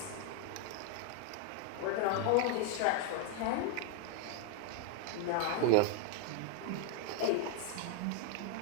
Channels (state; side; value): different; both; correlation 0.00